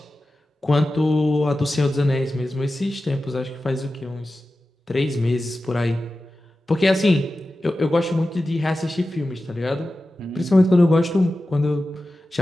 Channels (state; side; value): normal; both; correlation 0.94